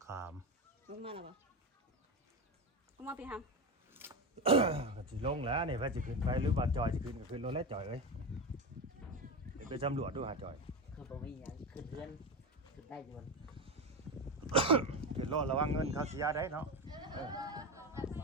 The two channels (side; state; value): both; normal; correlation 0.18